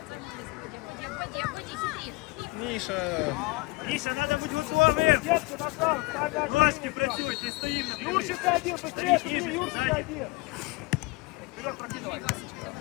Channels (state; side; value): quieter; right; 23.9 dB